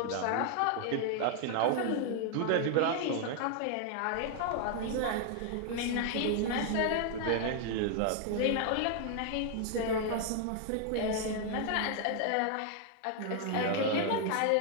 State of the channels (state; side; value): different; both; correlation 0.00